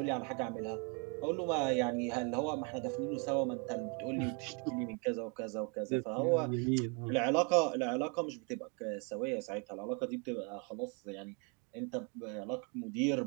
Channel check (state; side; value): quieter; left; 35.1 dB